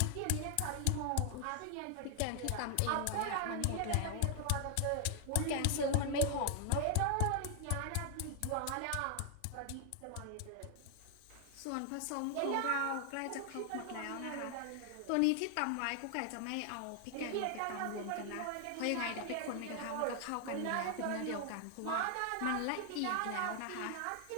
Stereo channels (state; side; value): different; both; correlation 0.00